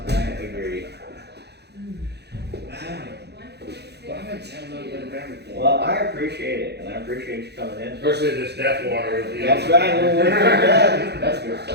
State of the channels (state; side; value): late; left; 0.48 ms